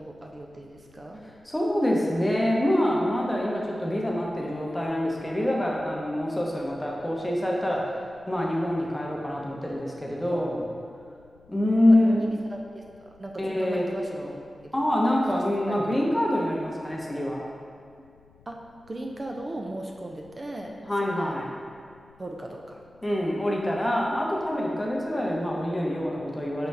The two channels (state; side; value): noise; left; rumble, 29 dB below the sound